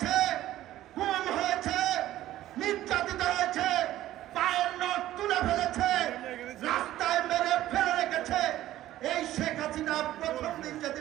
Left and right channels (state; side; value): quieter; left; 14.2 dB